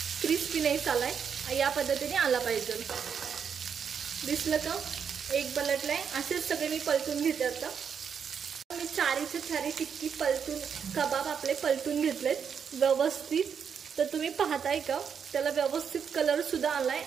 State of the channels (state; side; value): quieter; left; 7.1 dB